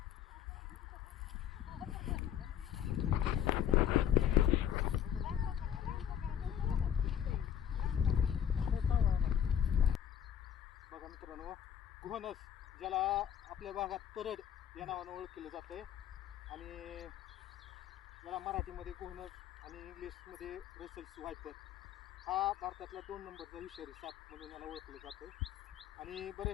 बघा मित्रांनो, घोणस ज्याला आपल्या भागात परड या नावानं ओळखलं जातंय आणि याला मराठीमध्ये घोणस आणि इंग्लिशमध्ये रसेल्स वायपर, हा भारतातला 2 नंबरचा विषारी साप म्हणून याला ओळखलं जातं. आणि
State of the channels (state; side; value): quieter; right; 9.7 dB